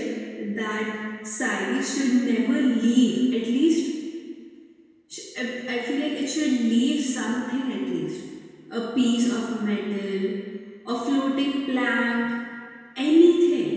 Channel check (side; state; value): both; identical; correlation 1.00